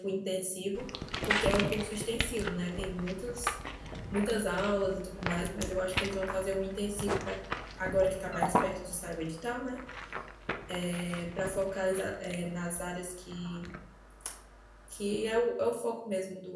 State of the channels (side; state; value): both; identical; correlation 1.00